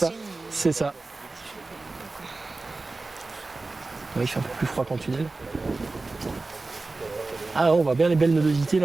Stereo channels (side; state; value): left; quieter; 3.5 dB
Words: c'est ça. Ouais, il fait un peu plus froid qu'en tunnel. Ah on voit bien les belles nodosités